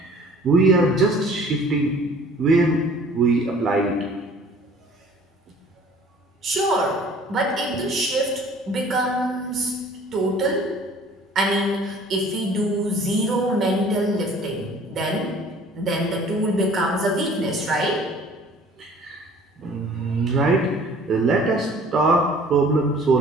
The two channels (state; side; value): normal; both; correlation 0.51